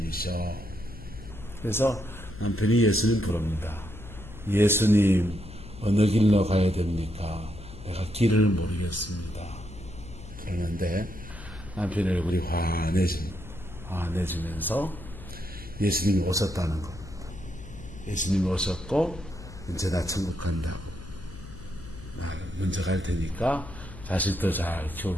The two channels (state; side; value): noise; left; hum, 15 dB below the sound